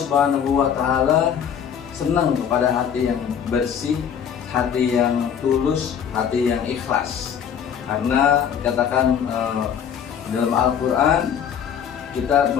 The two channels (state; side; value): quieter; right; 8.2 dB